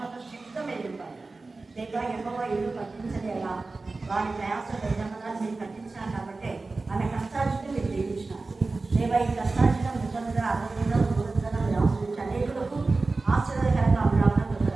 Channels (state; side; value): quieter; left; 3.6 dB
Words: శక్తిగా మీరు ఇవ్వాలి. దేవా ఎక్కువ ఇల్లు కట్టించలేలా వారి ప్రయాస యజమానాన్ని మీరు కట్టించారు కాబట్టి ఆమె కష్టార్జితం మీరు జీవించినారు. దేవా ఈ కష్టార్జితం నిజంగా ఆరోగ్యంగా దూరంగా మీరు ఆశ్రయించి అనేకులకు ఆశ్చర్యకరంగా అమరావడం